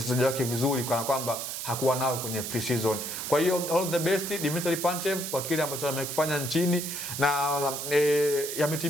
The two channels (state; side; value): noise; right; hiss, 5 dB below the sound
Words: wake vizuri, kana kwamba hakuwa nao kwenye pre-season. Kwa hiyo all the best Dimitri Pantev kwa kile ambacho amekifanya nchini, na